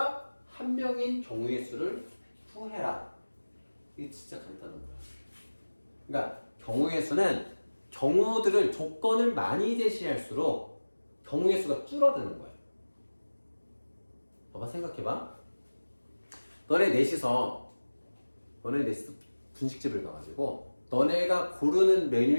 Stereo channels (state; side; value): inverted; both; correlation -1.00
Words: 한 명인 경우의 수를 구해라. 이게 진짜 간단한 거야. 그러니까 경우의 수는 경우들을 조건을 많이 제시할수록 경우의 수가 줄어드는 거야. 봐봐, 생각해봐. 너네 넷이서 분식집을 가가지고 너네가 고르는